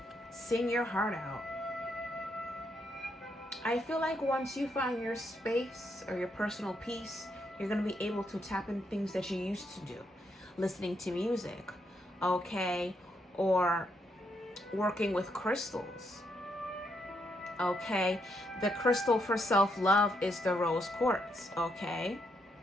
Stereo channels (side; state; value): both; normal; correlation 0.78